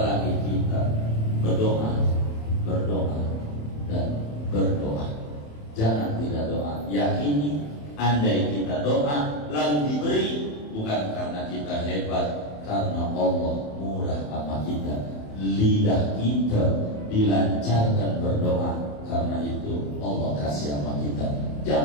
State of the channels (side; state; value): right; late; 27 ms